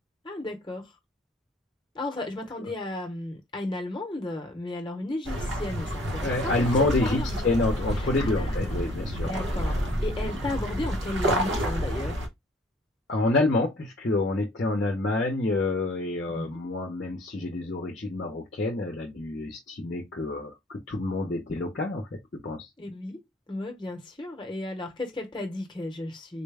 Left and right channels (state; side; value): normal; both; correlation 0.57